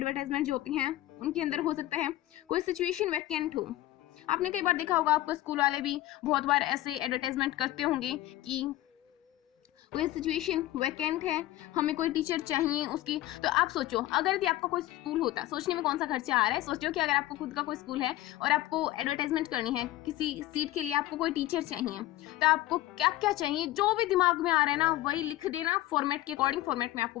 जो होती हैं उनके अंदर हो सकता है कोई सिचुएशन वैकेंट हो। आपने कई बार देखा होगा, आपको स्कूल वाले भी बहुत बार ऐसे एडवर्टाइजमेंट करते होंगे कि कोई सिचुएशन वैकेंट है, हमें कोई टीचर चाहिए उसकी। तो आप सोचो, अगर यदि आपका कोई स्कूल होता, सोचने में कौन सा खर्चा आ रहा है, सोचो कि अगर आपको खुद का कोई स्कूल है और आपको एडवर्टाइजमेंट करनी है किसी सीट के लिए, आपको कोई टीचर चाहिए, तो आपको क्या क्या चाहिए, जो भी दिमाग में आ रहा है ना वही लिख देना। फॉर्मेट के अकॉर्डिंग, फॉर्मेट में आपको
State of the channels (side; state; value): right; quieter; 15.6 dB